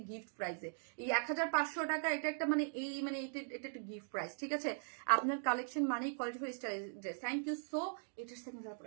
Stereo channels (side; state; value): left; silent; digital silence